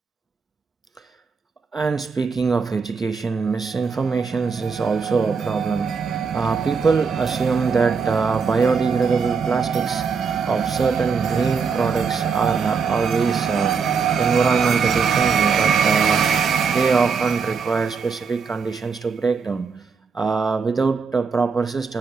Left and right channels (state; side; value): quieter; left; 5.5 dB